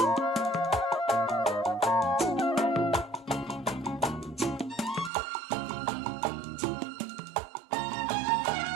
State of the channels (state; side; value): drops out; left; at 5.1 s